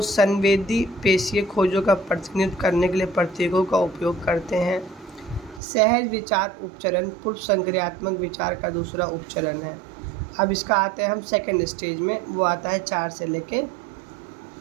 संवेदी पेशीय खोजों का प्रतिनिधित्व करने के लिए प्रतीकों का उपयोग करते हैं। सहज विचार उपचरण पूर्व संक्रियात्मक विचार का दूसरा उपचरण है। अब इसका आता है हम सेकंड स्टेज में, वो आता है 4 से लेके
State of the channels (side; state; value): left; drops out; at 5.6 s